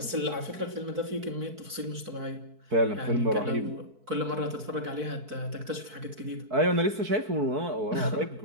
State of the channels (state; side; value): late; left; 4.6 ms